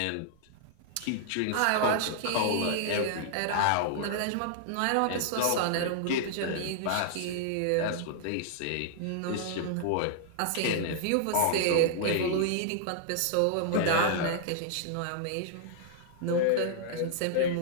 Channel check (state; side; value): different; both; correlation -0.01